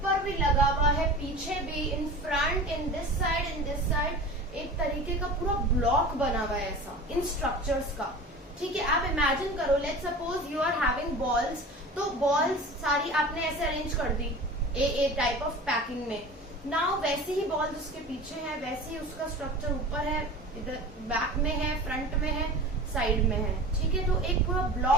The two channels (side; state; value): both; normal; correlation 0.36